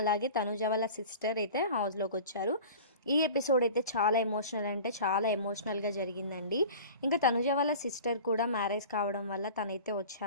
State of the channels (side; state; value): both; inverted; correlation -0.39